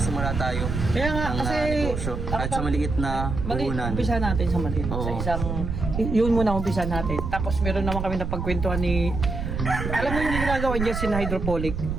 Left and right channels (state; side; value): noise; right; rumble, 4 dB below the sound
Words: tayo Kaya nga, ng kasi negosyo kahit sa maliit na puhunan. Umpisa natin sa maliit. Sa Oo. isang, yun muna umpisa natin. Tapos meron naman kami napagkwentuhan ni, alam mo yung ginagawa niya si hydroponic.